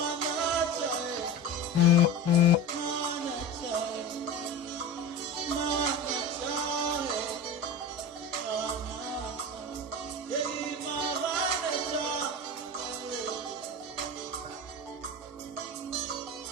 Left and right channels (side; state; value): both; normal; correlation 0.28